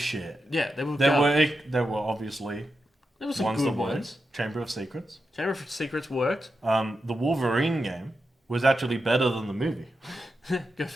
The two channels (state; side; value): normal; both; correlation 0.88